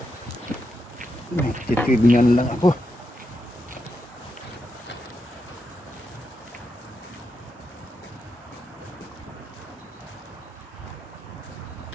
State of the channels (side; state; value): both; normal; correlation 0.85